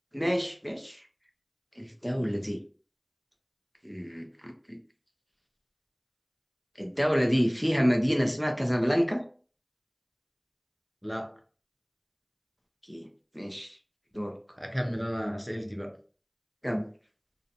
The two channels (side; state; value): both; identical; correlation 1.00